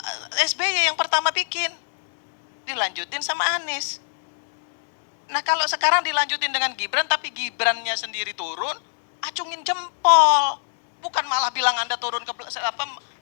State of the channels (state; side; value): silent; right; digital silence